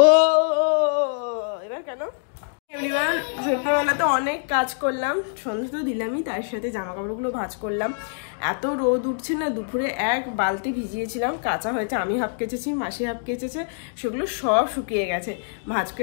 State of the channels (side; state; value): right; silent; digital silence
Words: এবার কেন? সন্ধ্যেবেলাতে অনেক কাজ করলাম, সন্ধ্যে তো দিলামই, তার সাথে জামা কাপড়গুলো ভাঁজ করলাম। এত রোদ উঠছে না, দুপুরে 1 বালতি ভিজিয়েছিলাম, কাঁচা হয়েছে। আমি হাফ কেচেছি, মাসি হাফ কেচেছে, সেগুলো সব শুকিয়ে গেছে। ভাঁজ